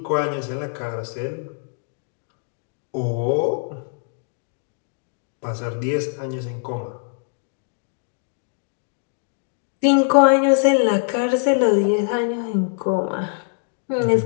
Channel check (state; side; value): silent; right; 63 dB below the other